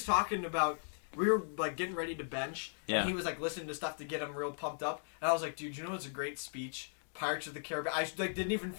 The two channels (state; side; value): silent; right; digital silence